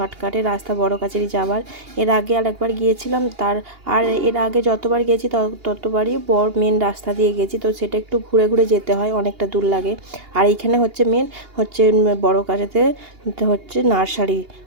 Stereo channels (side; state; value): left; late; 2.8 ms